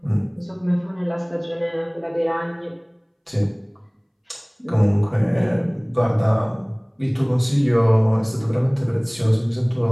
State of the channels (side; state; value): both; identical; correlation 1.00